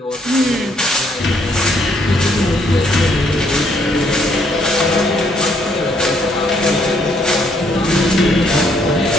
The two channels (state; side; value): normal; both; correlation 0.69